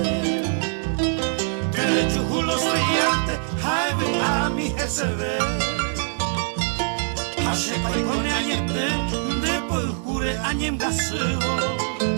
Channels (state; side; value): silent; left; 60 dB below the other